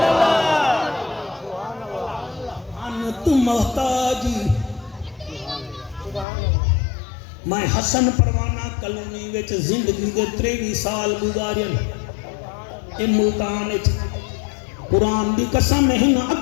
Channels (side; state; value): right; drops out; at 6.2 s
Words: ان تو محتاجی میں حسن پروانہ کلونی وچ زندگی دے 23 سال گزارن اے ملتان وچ قرآن دی قسم نہیں